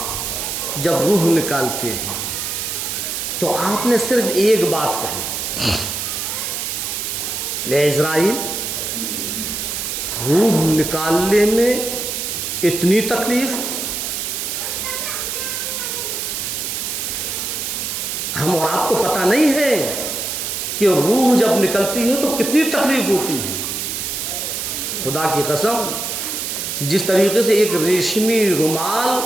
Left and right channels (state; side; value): noise; right; hiss, 3 dB below the sound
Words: जब रूह निकालते हैं तो आपने सिर्फ एक बात कही, ले इज़राइल, रूह निकालने में इतनी तकलीफ, हम और आपको पता नहीं है कि रूह जब निकलती है तो कितनी तकलीफ होती है। खुदा की कसम, जिस तरीके से एक रेशमी रुमाल